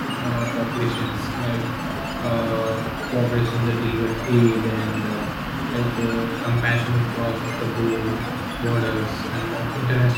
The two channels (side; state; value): both; identical; correlation 1.00